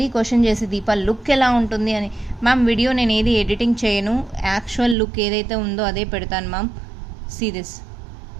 క్వశ్చన్ చేసి దీపా లుక్ ఎలా ఉంటుంది అని. మ్యామ్ వీడియో నేను ఏది ఎడిటింగ్ చేయను, యాక్చువల్ లుక్ ఏదైతే ఉందో అదే పెడతాను మ్యామ్. సీ దిస్,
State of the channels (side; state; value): left; drops out; at 5.0 s